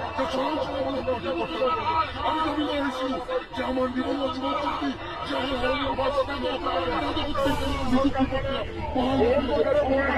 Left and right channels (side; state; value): both; identical; correlation 1.00